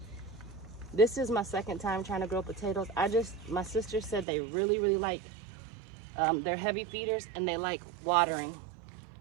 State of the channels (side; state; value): left; drops out; at 4.2 s